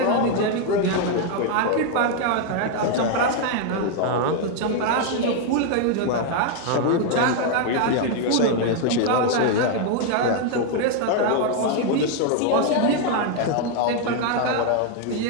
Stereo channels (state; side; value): different; both; correlation 0.00